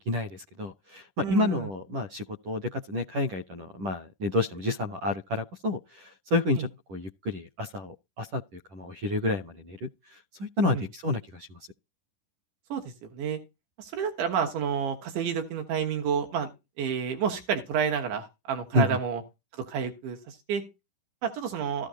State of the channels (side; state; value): left; late; 10 ms